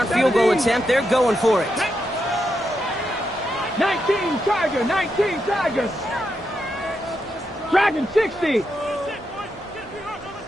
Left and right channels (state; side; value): normal; both; correlation 0.84